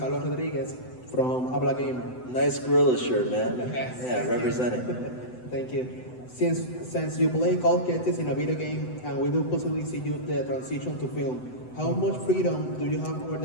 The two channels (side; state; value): right; late; 7.9 ms